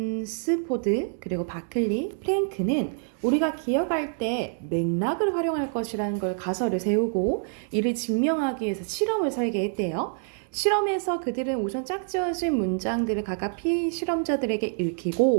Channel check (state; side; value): silent; left; 59 dB below the other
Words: 그리고 바클리, 프랭크는 우리가 기억할 때 맥락을 활용할 것이라는 걸 가설을 세우고 이를 증명하기 위해서 실험을 설계했대요. 실험에서 그들은 우선 짝지어진 문장들을 각각 피실험자들에게